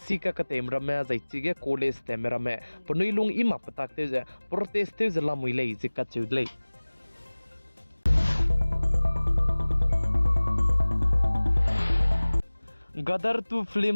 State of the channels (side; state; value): both; inverted; correlation -1.00